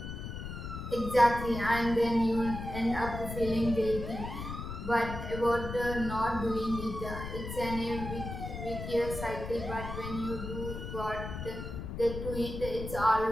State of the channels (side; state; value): left; noise; rumble, 7 dB below the sound